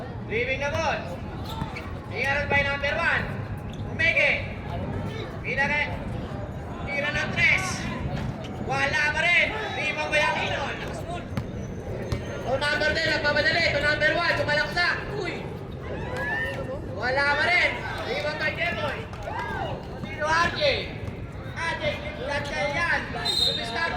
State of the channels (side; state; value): both; identical; correlation 1.00